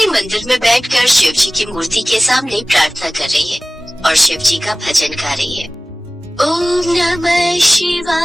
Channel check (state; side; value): normal; both; correlation 0.98